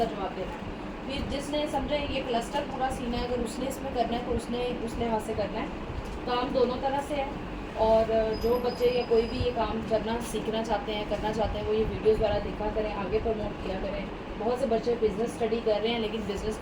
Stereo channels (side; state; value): both; identical; correlation 1.00